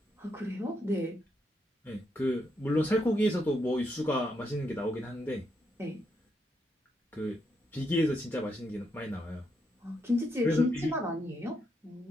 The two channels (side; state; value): both; normal; correlation 0.79